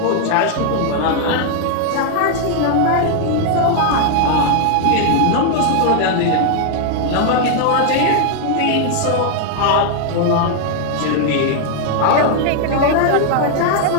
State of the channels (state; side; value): different; both; correlation 0.00